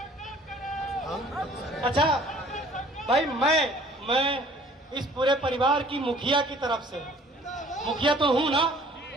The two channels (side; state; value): both; normal; correlation 0.53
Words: अच्छा भाई, मैं इस पूरे परिवार की मुखिया की तरफ से, मुखिया तो हूं ना,